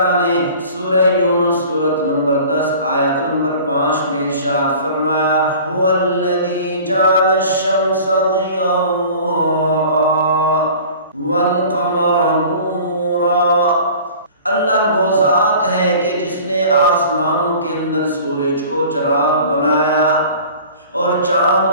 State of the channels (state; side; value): inverted; both; correlation -0.44